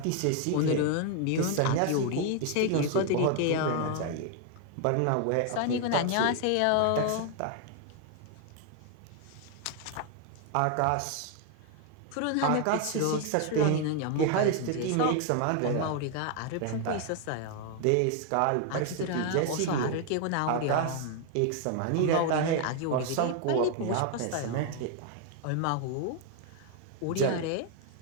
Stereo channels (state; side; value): different; both; correlation 0.00